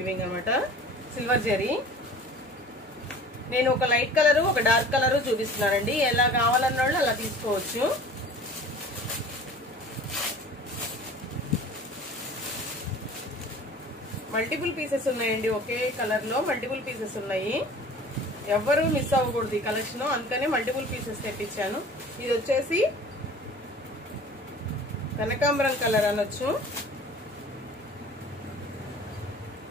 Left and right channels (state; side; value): normal; both; correlation 0.44